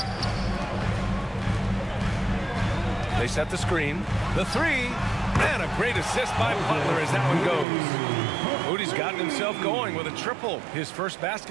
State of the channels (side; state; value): left; drops out; at 7.7 s